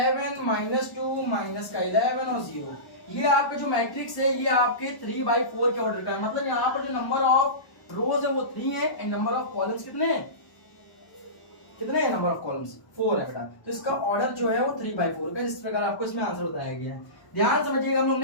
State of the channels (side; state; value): right; late; 1.1 ms